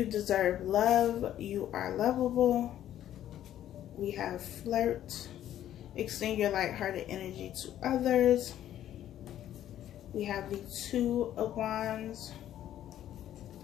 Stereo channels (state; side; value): quieter; right; 11.7 dB